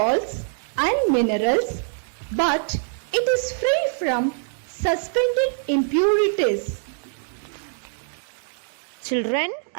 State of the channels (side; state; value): left; silent; digital silence